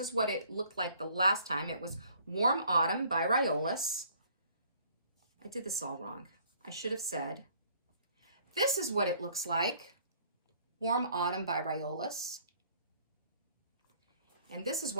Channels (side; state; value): both; inverted; correlation -0.59